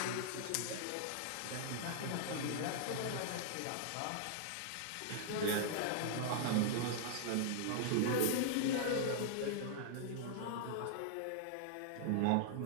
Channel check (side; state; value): both; different; correlation -0.01